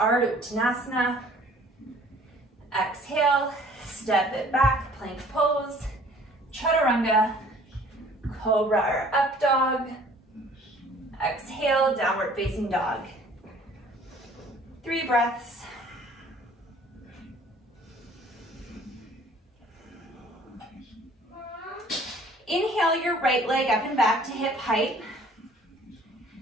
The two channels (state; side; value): normal; both; correlation 0.54